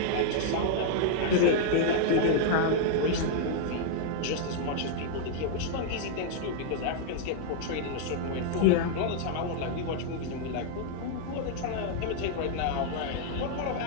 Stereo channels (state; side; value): different; both; correlation -0.01